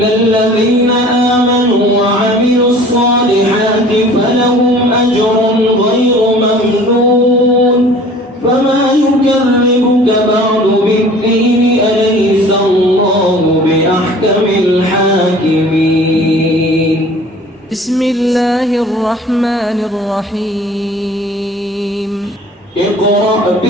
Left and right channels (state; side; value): normal; both; correlation 0.48